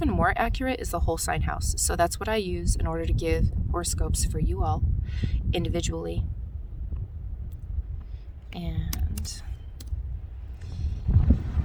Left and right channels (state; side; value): identical; both; correlation 1.00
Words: more accurate is the whole sign house. So that's what I use in order to give horoscopes for you all individually. And